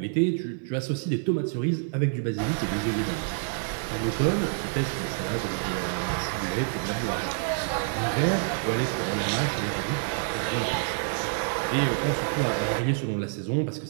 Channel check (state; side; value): silent; left; digital silence